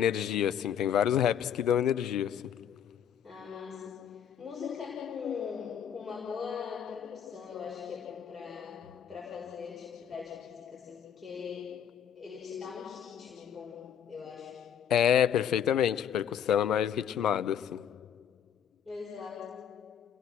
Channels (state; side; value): quieter; right; 8.9 dB